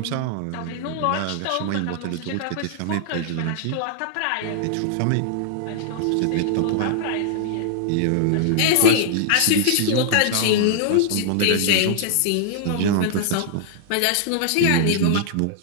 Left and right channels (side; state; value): both; different; correlation -0.01